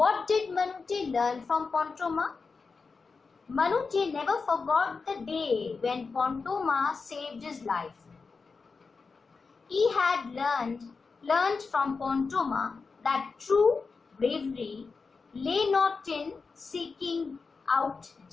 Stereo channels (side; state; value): right; quieter; 4.6 dB